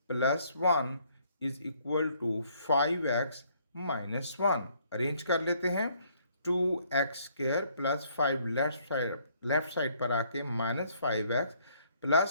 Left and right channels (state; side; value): inverted; both; correlation -0.65